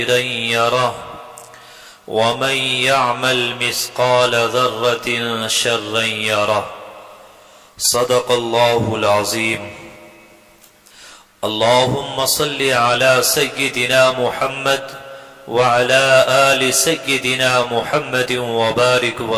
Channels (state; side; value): identical; both; correlation 1.00